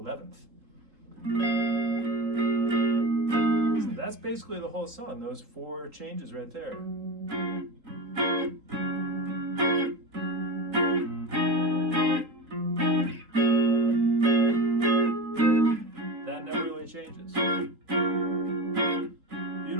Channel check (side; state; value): left; late; 3.8 ms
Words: So that's basically the whole song, those 4 changes right there. That never really changes.